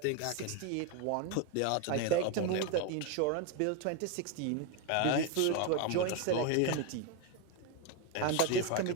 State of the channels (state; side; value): different; both; correlation 0.02